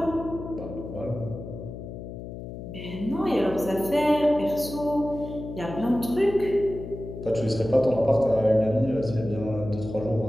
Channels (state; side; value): noise; left; hum, 10 dB below the sound